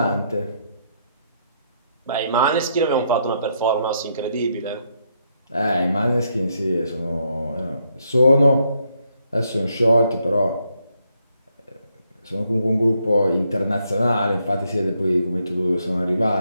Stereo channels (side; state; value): both; inverted; correlation -0.76